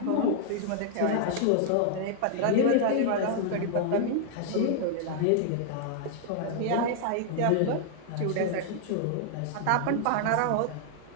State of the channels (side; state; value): both; different; correlation -0.01